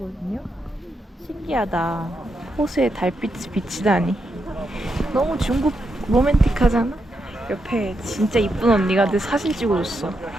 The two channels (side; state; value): both; normal; correlation 0.83